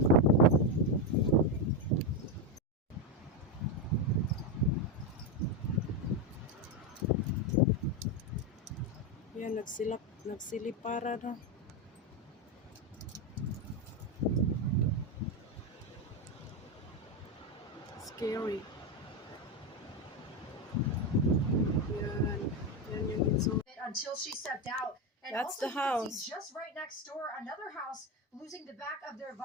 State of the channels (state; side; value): normal; both; correlation 0.09